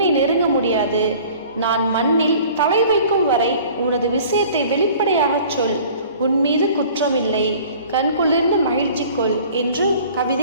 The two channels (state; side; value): inverted; both; correlation -0.48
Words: நெருங்க முடியாது. நான் மண்ணில் தலை வைக்கும் வரை உனது விஷயத்தை வெளிப்படையாக சொல். உன் மீது குற்றமில்லை, கண்குளிர்ந்து மகிழ்ச்சி கொள் என்று